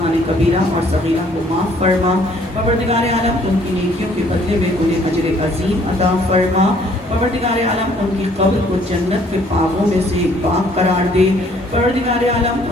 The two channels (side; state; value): both; normal; correlation 0.61